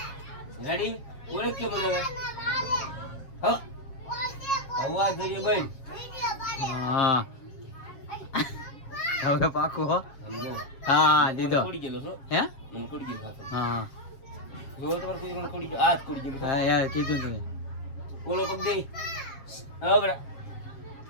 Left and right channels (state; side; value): late; right; 7.4 ms